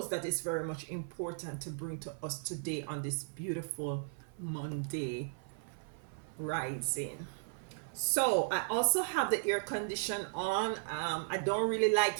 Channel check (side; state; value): left; silent; 54 dB below the other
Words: that it's very much important to bring to us today on this beautiful Monday rising. So I also have the air condition on. I don't really